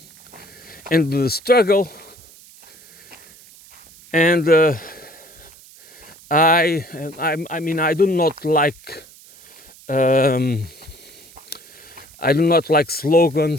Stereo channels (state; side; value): noise; right; hiss, 23 dB below the sound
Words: And the struggle, and I do not like